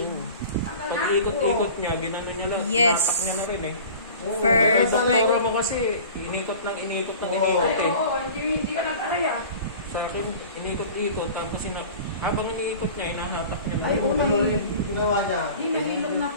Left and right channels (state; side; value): inverted; both; correlation -0.41